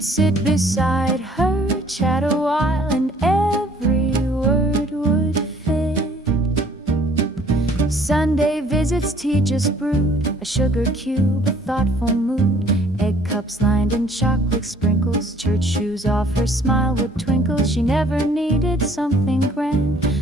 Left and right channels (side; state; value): both; normal; correlation 0.58